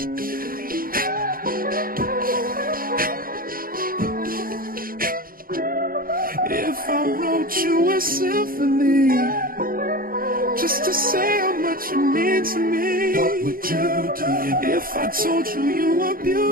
If I wrote you a symphony, just to say how much you mean to me. What would you do if I told you you were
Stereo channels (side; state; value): left; late; 0.42 ms